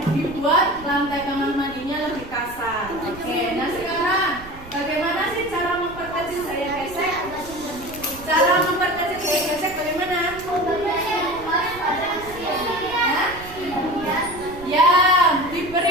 dibuat lantai kamar mandinya lebih kasar. Oke, nah sekarang bagaimana sih cara memperkecil gaya gesek? Cara memperkecil gaya gesek bagaimana? Ya,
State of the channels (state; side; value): noise; right; rumble, 17 dB below the sound